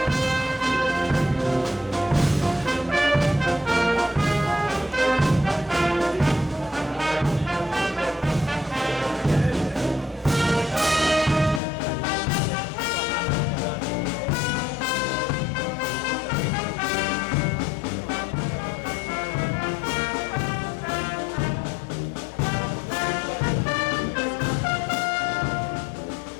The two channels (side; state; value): right; drops out; at 11.6 s